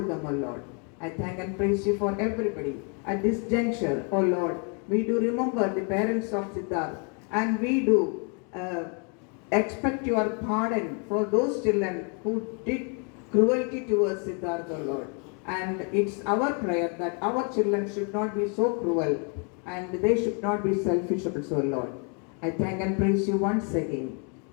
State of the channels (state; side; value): quieter; right; 37.8 dB